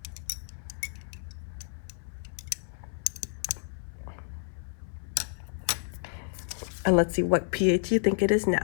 And let's see what pH you think it is now.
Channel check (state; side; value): silent; right; 58 dB below the other